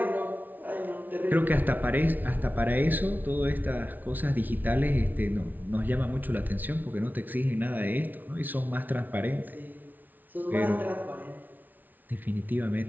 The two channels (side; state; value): left; late; 0.083 ms